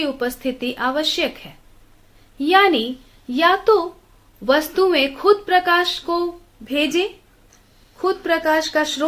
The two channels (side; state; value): both; identical; correlation 1.00